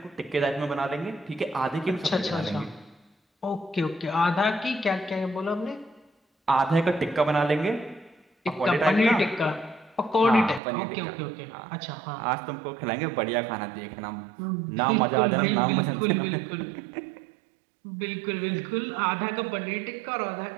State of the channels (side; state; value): left; drops out; at 10.6 s